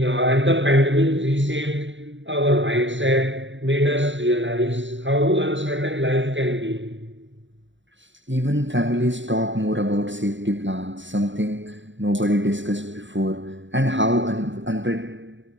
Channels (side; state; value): left; late; 0.54 ms